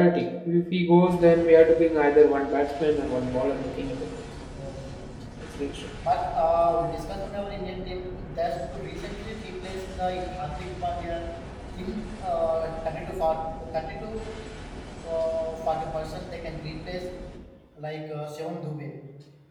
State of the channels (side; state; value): both; identical; correlation 1.00